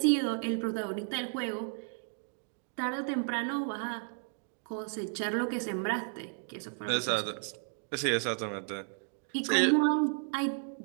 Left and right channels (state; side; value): silent; left; 56 dB below the other